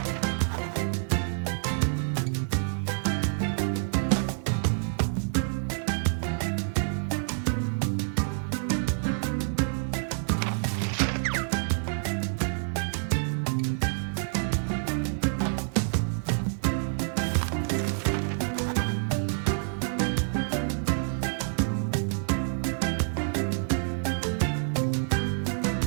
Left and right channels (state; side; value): silent; left; 59 dB below the other